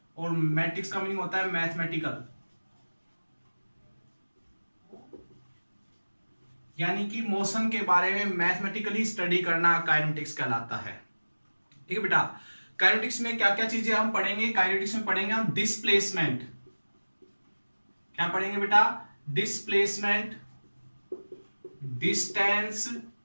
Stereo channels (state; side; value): inverted; both; correlation -1.00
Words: और मैटिक्स का मीनिंग होता है मैथमेटिकल, यानी कि मोशन के बारे में मैथमेटिकली स्टडी करना काइनेमेटिक्स कहलाता है। ठीक है बेटा। काइनेमेटिक्स में क्या क्या चीजें हम पढ़ेंगे? काइनेमेटिक्स में पढ़ेंगे हम डिस्प्लेसमेंट। क्या पढ़ेंगे बेटा? Displacement, distance,